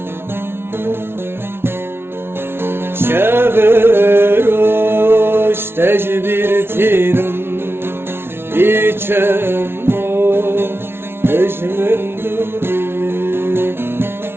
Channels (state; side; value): late; left; 0.12 ms